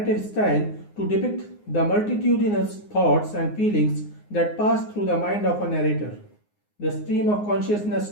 style to depict the multitudinous thoughts and feelings that pass through the mind of a narrator. The stream of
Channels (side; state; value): right; late; 9.6 ms